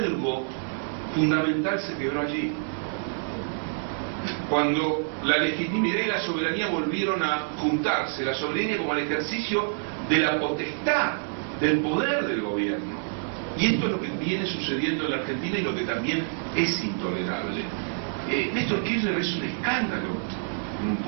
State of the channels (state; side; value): silent; left; 58 dB below the other